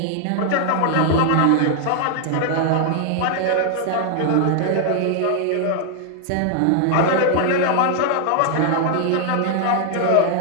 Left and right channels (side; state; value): both; different; correlation 0.00